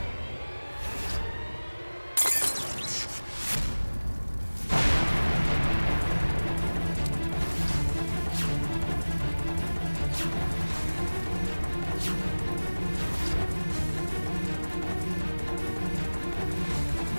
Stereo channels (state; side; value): inverted; both; correlation -1.00